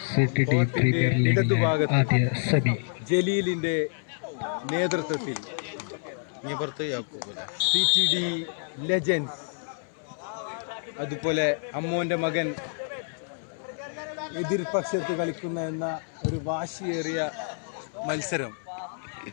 ഇടതുഭാഗത്ത് ജലീലിന്റെ നേതൃത്വത്തിൽ CTD ലെജൻസ്, അതുപോലെ അമ്മോന്റെ മകൻ എതിർപക്ഷത്ത് കളിക്കുന്ന എന്ന ഒരു വാശിയേറിയ മത്സരം.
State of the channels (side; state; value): right; silent; 59 dB below the other